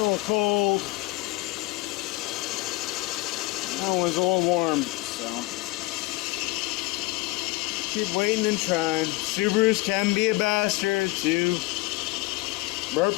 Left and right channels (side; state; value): right; quieter; 22.0 dB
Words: Still cold. That one's a little warm, so keep waiting and trying. Subarus can be a bastard to burp